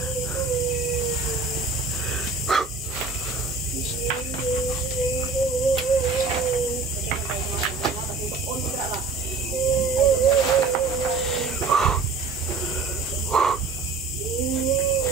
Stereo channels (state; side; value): quieter; left; 4.2 dB